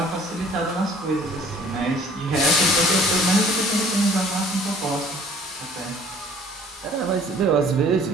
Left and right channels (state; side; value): normal; both; correlation 0.53